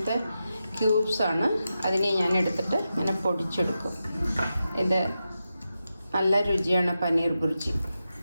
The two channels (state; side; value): inverted; both; correlation -0.90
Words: ക്യൂബ്സാണ്. അതിനെ ഞാൻ എടുത്തിട്ട് ഇങ്ങനെ പൊടിച്ചെടുക്കും. ഇത് നല്ല രുചിയാണ് പനീർ ബുർജി.